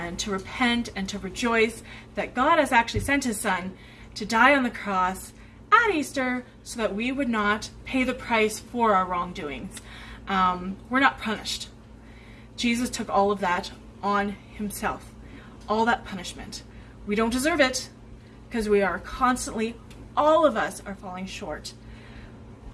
to repent and to rejoice that God has actually sent his son to die on the cross at Easter so that we would not pay the price for our wrongdoings. We're not punished. Jesus took all of that on himself, all that punishment. We don't deserve it because we are constantly, all of us are falling short.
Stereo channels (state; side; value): identical; both; correlation 1.00